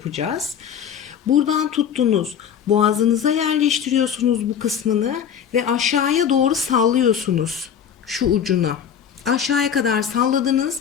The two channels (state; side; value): quieter; right; 8.4 dB